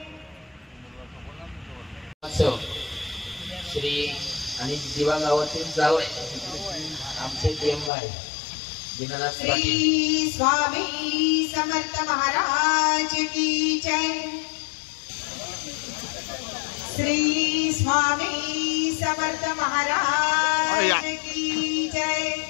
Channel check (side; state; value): right; drops out; at 7.9 s